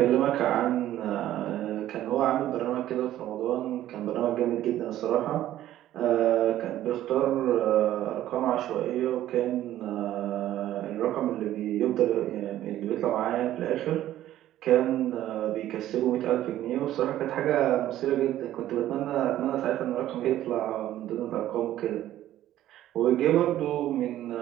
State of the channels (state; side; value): quieter; left; 13.2 dB